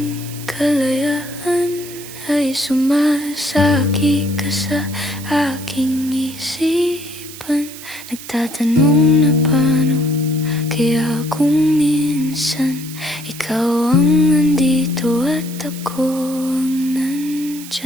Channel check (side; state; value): right; noise; hiss, 14 dB below the sound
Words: kalayaan ay sumasagi ka sa aking isipan. Nagtatanong na paano kaya kung minsan ikaw ang nandito at ako ang